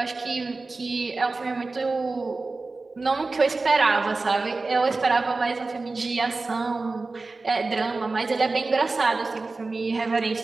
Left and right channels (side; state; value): left; quieter; 3.6 dB